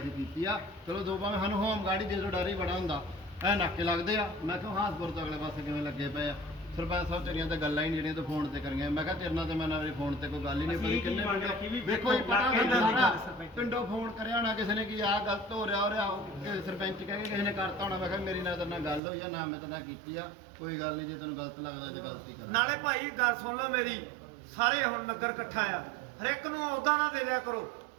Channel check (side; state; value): left; drops out; at 19.0 s